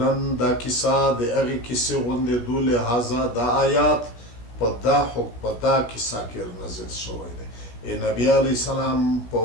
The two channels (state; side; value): late; right; 17 ms